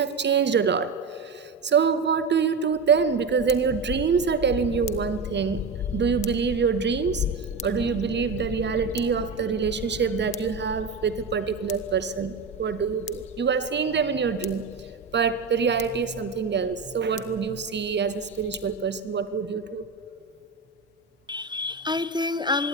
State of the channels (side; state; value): left; quieter; 4.5 dB